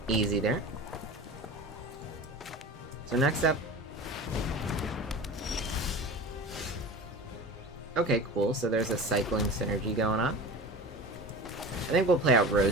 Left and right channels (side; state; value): both; normal; correlation 0.34